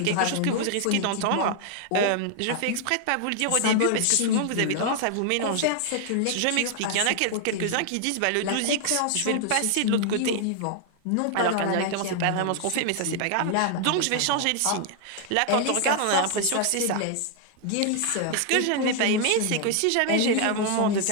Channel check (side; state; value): both; different; correlation 0.00